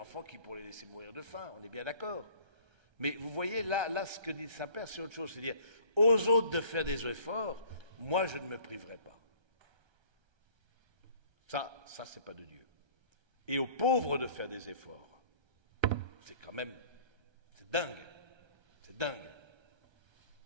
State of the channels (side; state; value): left; late; 1.3 ms